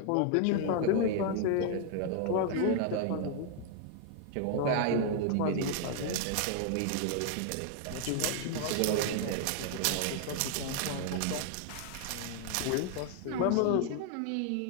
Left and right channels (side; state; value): both; different; correlation 0.00